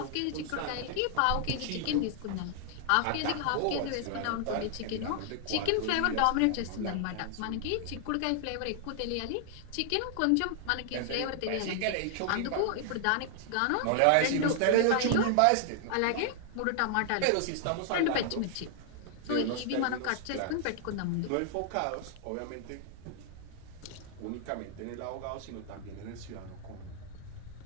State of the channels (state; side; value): different; both; correlation 0.00